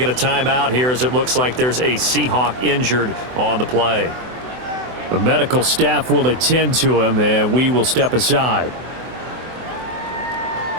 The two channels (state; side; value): late; left; 24 ms